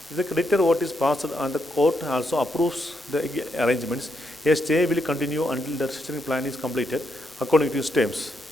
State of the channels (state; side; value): normal; both; correlation 0.79